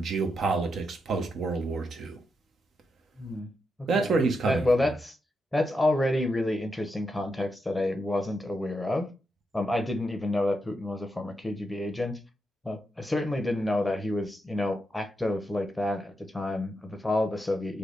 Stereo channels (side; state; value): both; normal; correlation 0.84